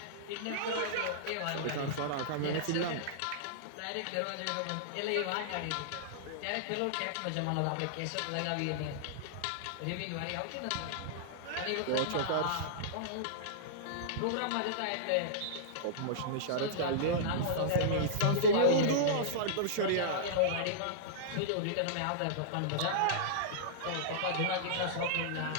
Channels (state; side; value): different; both; correlation -0.02